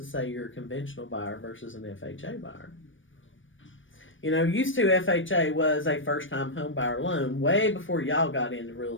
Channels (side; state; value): right; late; 0.56 ms